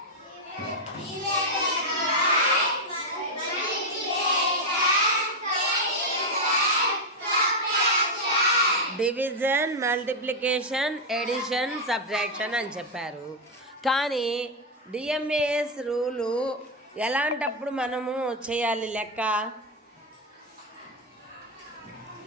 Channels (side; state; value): both; normal; correlation 0.04